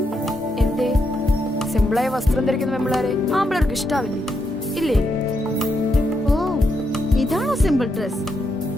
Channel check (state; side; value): normal; both; correlation 0.81